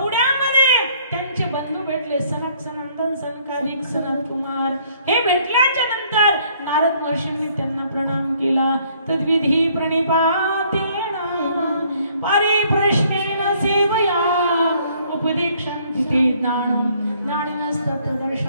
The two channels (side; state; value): both; inverted; correlation -0.63